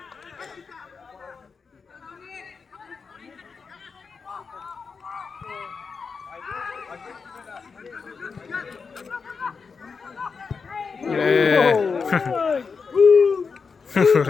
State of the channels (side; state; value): right; quieter; 5.2 dB